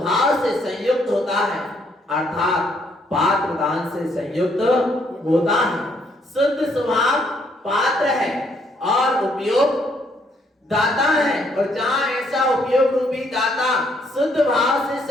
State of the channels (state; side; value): normal; both; correlation 0.69